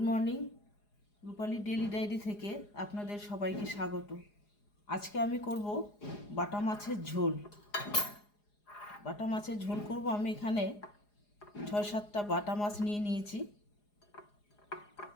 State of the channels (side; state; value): right; late; 4.8 ms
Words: morning. রূপালী daily diary থেকে আপনাদের সবাইকে স্বাগত। আজকে আমি করব বাটা মাছের ঝোল। বাটা মাছের ঝোল করব। আমি এখানে 6-7টা বাটা মাছ নিয়ে নিয়েছি।